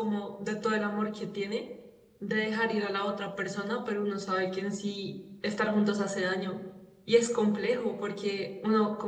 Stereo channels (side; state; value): both; identical; correlation 1.00